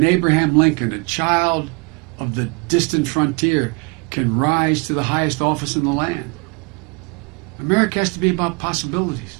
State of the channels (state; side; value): quieter; left; 31.6 dB